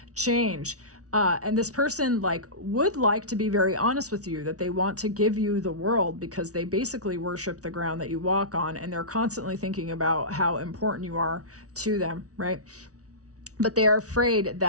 change. And this person would like to be very honest with you, that they want to give you the world, because they basically worship the ground that you walk on, and they're constantly thinking about how important you are to them, right? But they are afraid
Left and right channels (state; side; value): late; left; 0.67 ms